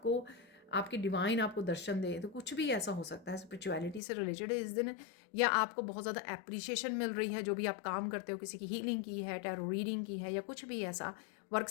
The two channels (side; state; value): right; drops out; at 4.0 s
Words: आपके डिवाइन आपको दर्शन दे, तो कुछ भी ऐसा हो सकता है स्पिरिचुअलिटी से रिलेटेड इस दिन। या आपको बहुत ज़्यादा एप्रिसिएशन मिल रही है, जो भी आप काम करते हो, किसी की हीलिंग की है, टैरो रीडिंग की है, या कुछ भी ऐसा वर्क